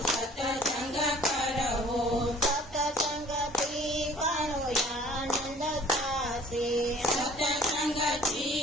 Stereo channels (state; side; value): normal; both; correlation 0.52